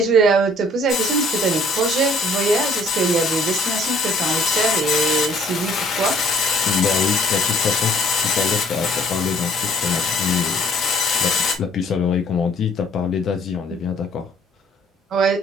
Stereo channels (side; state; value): both; normal; correlation 0.59